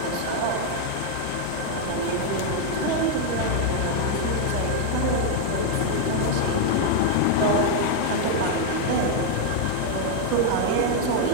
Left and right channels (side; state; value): both; different; correlation 0.00